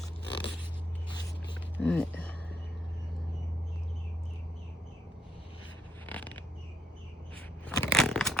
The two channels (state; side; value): normal; both; correlation 0.72